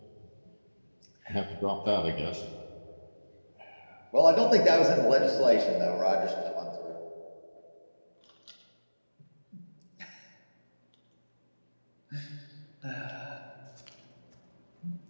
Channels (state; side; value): inverted; both; correlation -1.00